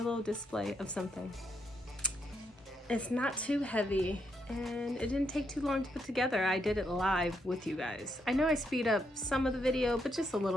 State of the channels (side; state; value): both; normal; correlation 0.78